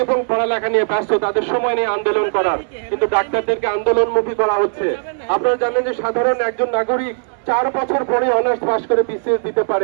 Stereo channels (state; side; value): silent; left; 64 dB below the other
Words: এবং পড়ালেখা নিয়ে ব্যস্ত, তাদের সময় নিয়ে আন্দোলন করার, কিন্তু ডাক্তারদেরকে আন্দোলনমুখী করা হচ্ছে। আপনারা জানেন যে সাধারণ একজন নাগরিক 4 বছর পরে অনার্স পাস করে বিসিএস দিতে